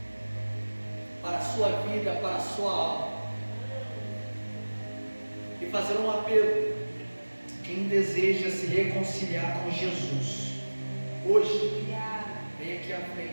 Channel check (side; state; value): both; inverted; correlation -1.00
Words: para a sua vida, para a sua alma, e fazer um apelo. Quem deseja se reconciliar com Jesus, hoje, vem aqui à